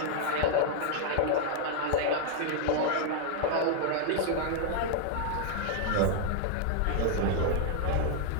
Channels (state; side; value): different; both; correlation 0.00